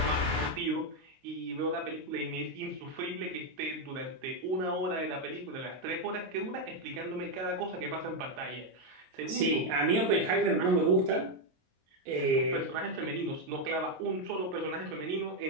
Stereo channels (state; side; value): late; left; 22 ms